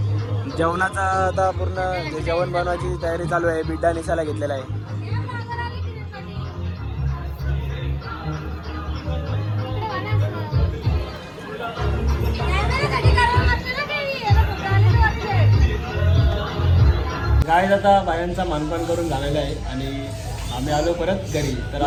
जेवणाचा आता पूर्ण जेवण बनवायची तयारी चालू आहे. बिड्डा निसाला घेतलेला आहे. गाय आता बायांचा मानपान करून झालेला आहे आणि आम्ही आलो परत घरी. तर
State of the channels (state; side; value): identical; both; correlation 1.00